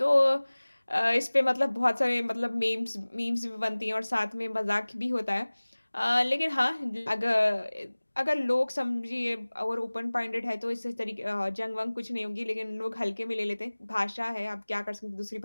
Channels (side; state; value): both; inverted; correlation -1.00